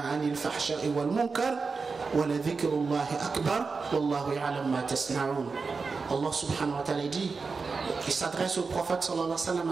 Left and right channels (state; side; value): quieter; left; 4.6 dB